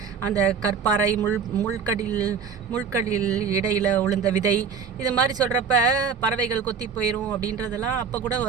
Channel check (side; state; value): left; quieter; 6.2 dB